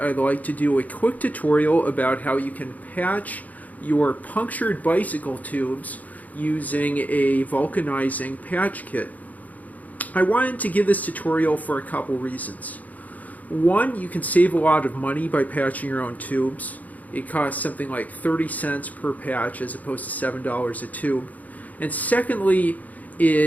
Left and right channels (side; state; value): right; late; 0.077 ms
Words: like to do a quick tutorial about how you can patch your punctured bicycle tubes using a vulcanizing patch kit. I wanted to give this tutorial for a couple reasons. One, you can save a lot of money by patching your own tubes. It costs something like 30 cents per patch as opposed to $7 a tube. And secondly,